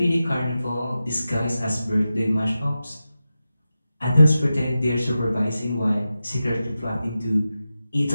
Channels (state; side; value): inverted; both; correlation -0.93